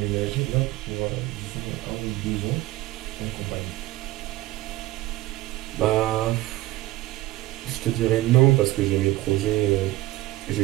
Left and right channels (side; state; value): left; quieter; 17.2 dB